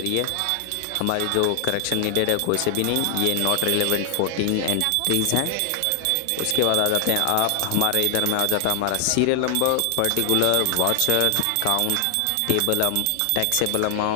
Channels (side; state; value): both; different; correlation 0.00